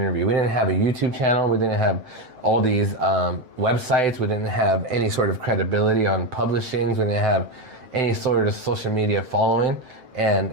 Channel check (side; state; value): left; late; 7.8 ms